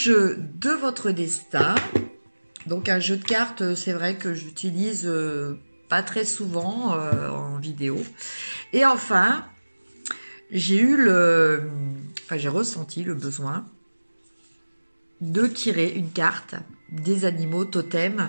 de votre destin. Donc un jeu de cartes, c'est vrai que j'utilise pas très souvent en vidéo. Et enfin, j'ai ressenti le besoin de tirer une carte des animaux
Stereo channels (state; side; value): inverted; both; correlation -1.00